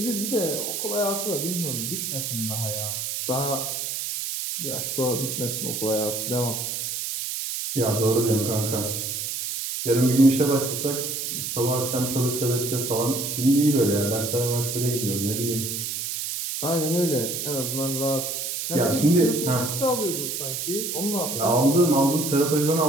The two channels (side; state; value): right; noise; hiss, 3 dB below the sound